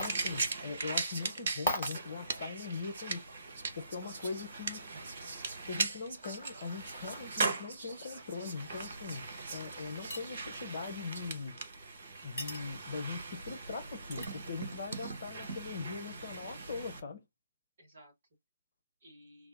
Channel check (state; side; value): inverted; both; correlation -0.69